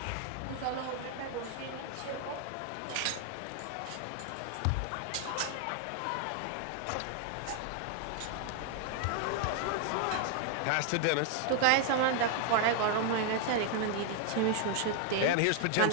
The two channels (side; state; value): both; different; correlation 0.00